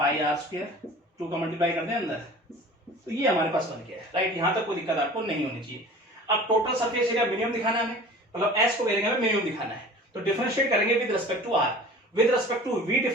are square 2 का मल्टीप्लाई कर दें अंदर, तो ये हमारे पास बन गया है, राइट। यहां तक कोई दिक्कत आपको नहीं होनी चाहिए। अब टोटल सरफेस एरिया मिनिमम दिखाना है हमें, मतलब एस को वैल्यू हमें मिनिमम दिखाना है, तो डिफरेंशिएट करेंगे with respect to r, with respect to v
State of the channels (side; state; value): both; normal; correlation 0.42